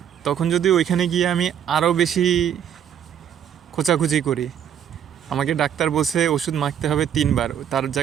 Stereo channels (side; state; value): left; quieter; 9.2 dB